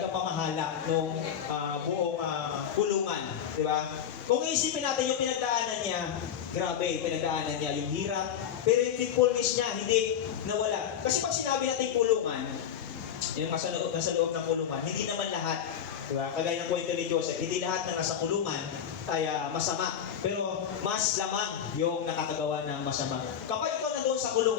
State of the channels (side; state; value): right; quieter; 8.8 dB